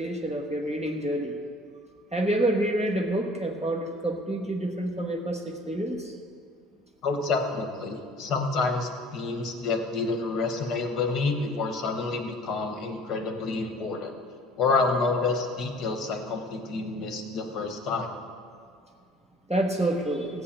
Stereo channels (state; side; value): normal; both; correlation 0.50